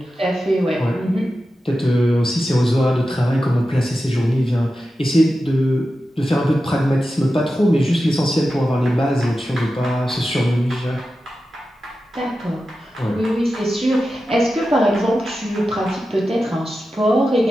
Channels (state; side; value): normal; both; correlation 0.92